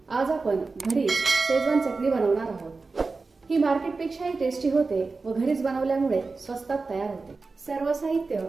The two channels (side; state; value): left; quieter; 4.0 dB